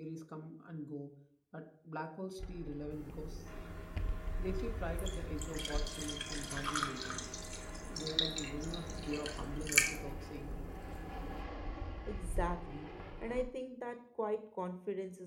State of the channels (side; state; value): both; identical; correlation 1.00